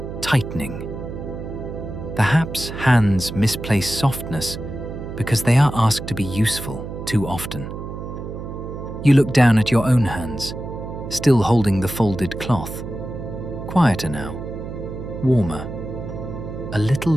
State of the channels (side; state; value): right; noise; hum, 8 dB below the sound